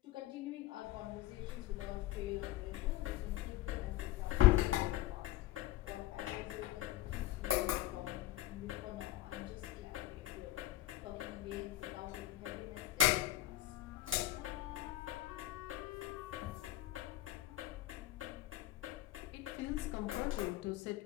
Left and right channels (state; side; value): quieter; right; 15.0 dB